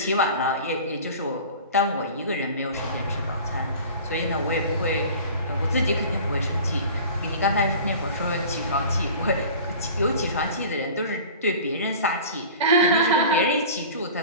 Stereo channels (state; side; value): inverted; both; correlation -0.40